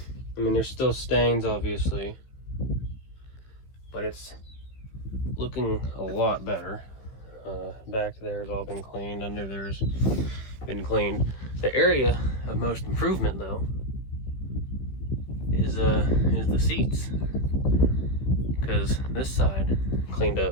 I mean, there's still stains, obviously, but it's looking a lot better. Back there's all been cleaned, under there's been cleaned. The area of most improvement, though, is the seats, because this side cleaned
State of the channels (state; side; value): late; right; 15 ms